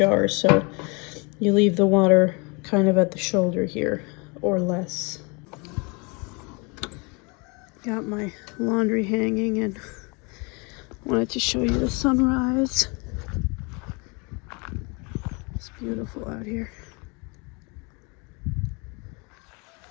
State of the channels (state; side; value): quieter; right; 30.2 dB